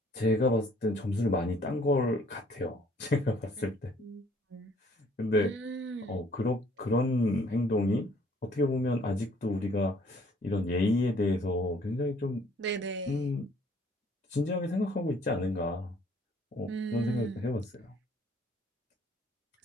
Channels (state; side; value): normal; both; correlation 0.60